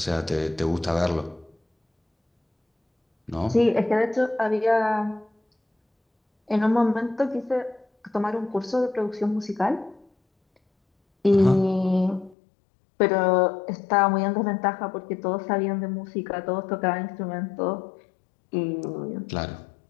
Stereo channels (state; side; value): drops out; right; at 12.4 s